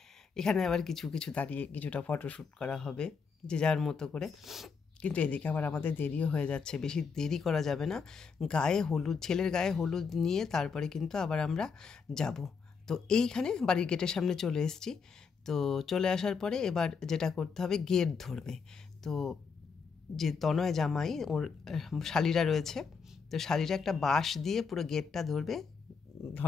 এখানে আবার কিছু দাঁড়িয়ে কিছুটা ফটোশ্যুট করা হবে যে যার মতো করে। কিন্তু এদিকে আবার আমাদের দেরিও হয়ে যাচ্ছে, বেশি দেরি করা যাবে না। ছেলের গায়ে হলুদ নিয়ে তারপরে কিন্তু আবার আমরা যাব। তো এইখানে বাড়ির গেটের সামনে চলে এসেছি। তো চলে আসার পরে এবার যেটা করতে হবে, গেট ধরবে। তো যে তনয় জামাই, ওর শালিরা রয়েছে, তো শালিরা একটা বাঁশ দিয়ে পুরো গেটটা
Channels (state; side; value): quieter; right; 5.6 dB